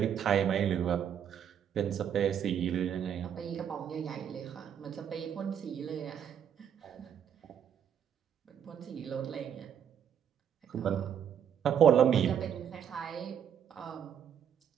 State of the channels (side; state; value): left; quieter; 8.8 dB